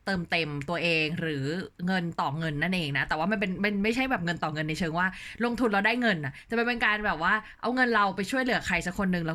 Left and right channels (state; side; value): identical; both; correlation 1.00